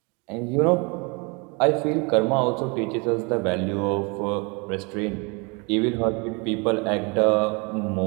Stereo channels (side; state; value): left; quieter; 30.6 dB